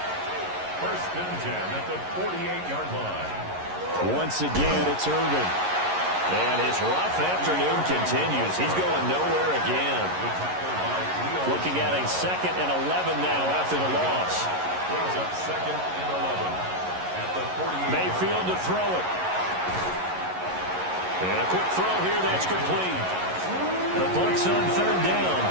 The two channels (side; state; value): left; late; 11 ms